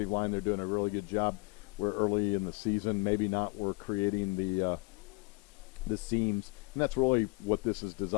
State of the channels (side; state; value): right; quieter; 28.9 dB